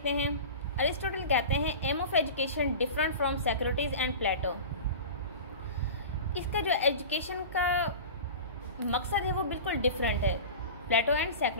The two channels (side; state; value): both; inverted; correlation -0.33